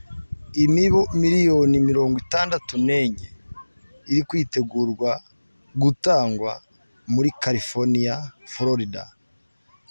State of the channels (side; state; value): both; inverted; correlation -1.00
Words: Imibu miliyoni 64 iri kwitegurwa gutangwa muri California, Florida.